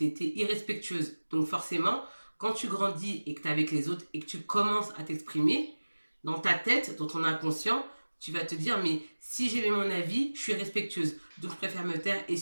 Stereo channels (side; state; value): both; inverted; correlation -1.00